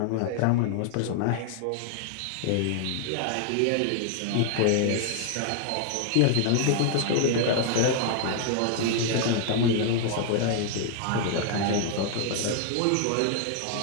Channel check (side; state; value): both; different; correlation 0.00